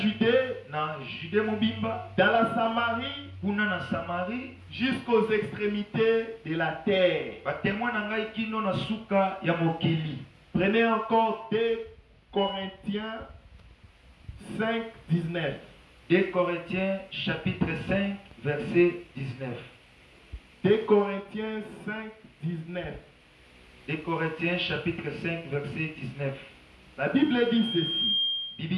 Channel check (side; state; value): both; identical; correlation 1.00